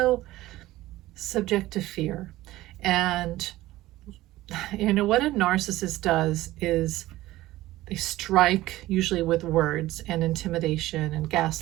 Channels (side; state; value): left; quieter; 16.7 dB